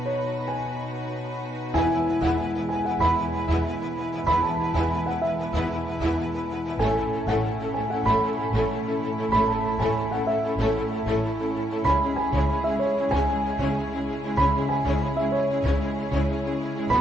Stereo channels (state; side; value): normal; both; correlation 0.78